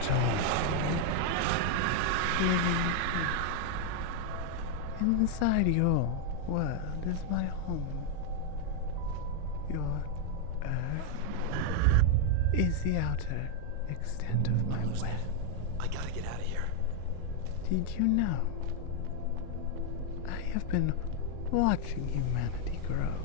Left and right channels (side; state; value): both; different; correlation 0.00